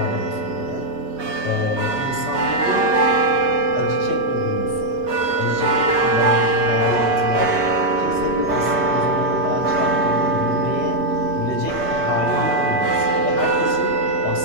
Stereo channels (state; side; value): late; left; 5.9 ms